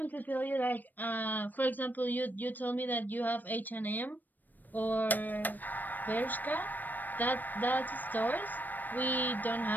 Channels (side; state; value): right; late; 0.089 ms